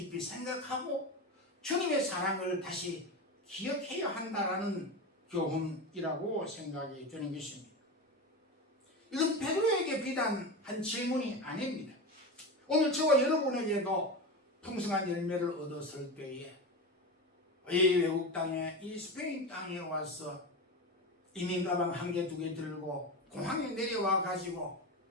생각하고 주님의 사랑을 다시 기억해야 한다라는 교훈이라고 생각이 드는 것입니다. 이건 베드로에게 비단 한 질문이 아닙니다. 오늘 저와 여러분에게도 풍성한 열매를 얻었을 때에 이 외국 땅에, 이 스페인 땅에 와서 이민 가방 한 개, 두 개 들고 공항에 내려와 가지고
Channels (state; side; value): normal; both; correlation 0.22